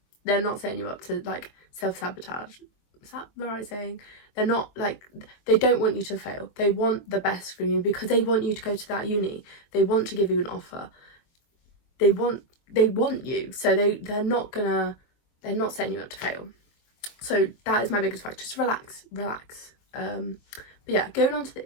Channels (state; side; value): late; right; 23 ms